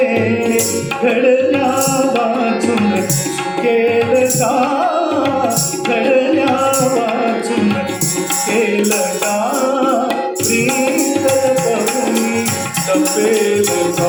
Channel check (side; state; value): both; identical; correlation 1.00